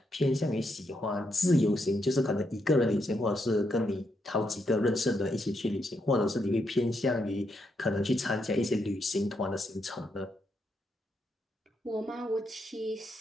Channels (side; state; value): both; normal; correlation 0.80